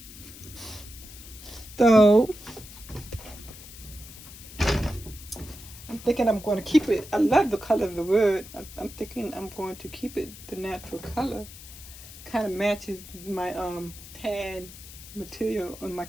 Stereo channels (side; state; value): left; noise; hiss, 16 dB below the sound